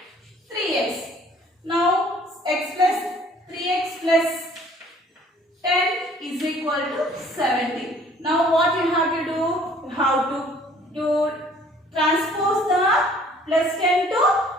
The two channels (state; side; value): normal; both; correlation 0.56